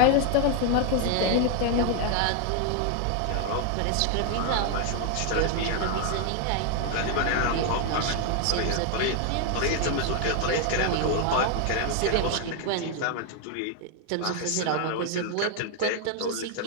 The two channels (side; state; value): both; different; correlation 0.00